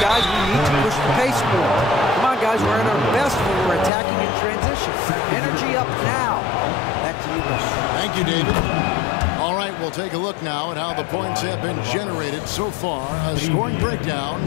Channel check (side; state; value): right; drops out; at 3.9 s